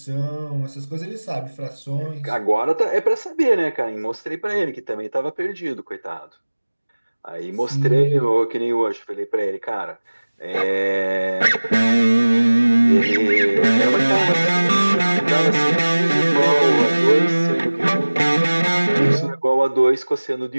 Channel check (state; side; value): inverted; both; correlation -1.00